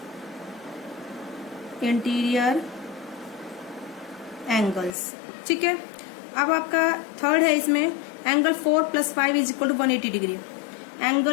interior angles. ठीक है, अब आपका थर्ड है इसमें angle 4 + 5 is equal to 180 degree.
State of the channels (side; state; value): right; drops out; at 5.0 s